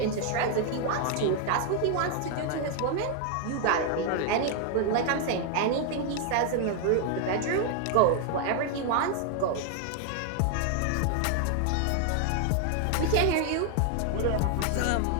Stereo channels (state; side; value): different; both; correlation 0.00